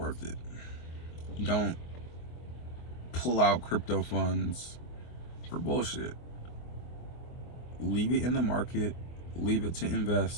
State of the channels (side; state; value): right; late; 24 ms